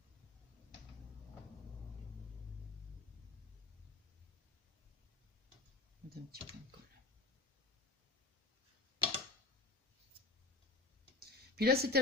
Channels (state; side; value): quieter; right; 3.4 dB